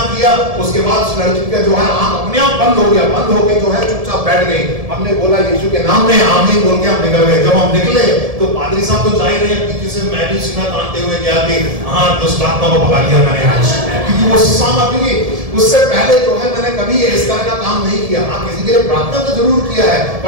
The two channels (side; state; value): left; late; 1.7 ms